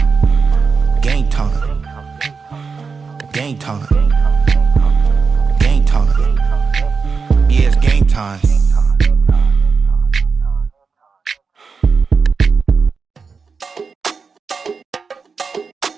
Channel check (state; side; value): quieter; left; 5.1 dB